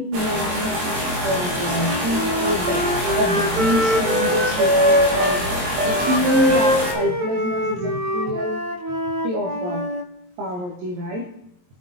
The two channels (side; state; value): left; late; 22 ms